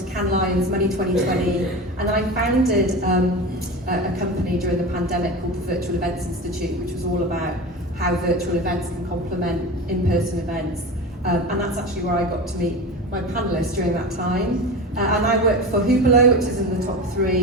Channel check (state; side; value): normal; both; correlation 0.27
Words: Cannes Lions, Money 2020, and then I founded a company during the pandemic called the Virtual Events Institute, which was all about how virtual events can complement in-person events, and that's actually where I got to meet my panelists during that time. And I work for Hublot, which is in the top